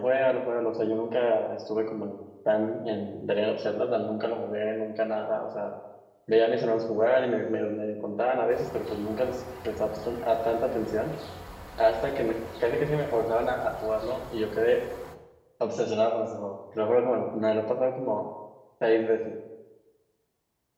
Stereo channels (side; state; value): both; identical; correlation 1.00